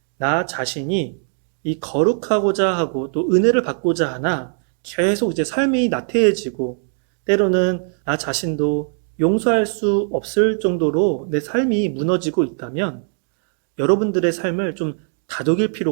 나 자신이 이 거룩하고자 하고 또 은혜를 받고자 하나 계속 이제 삶이 나태해지고 때로는 나 자신도 용서할 수 없을 정도로 내 삶이 무너지고 있다면 여러분들의 삶을 좀 다독일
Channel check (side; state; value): left; silent; 60 dB below the other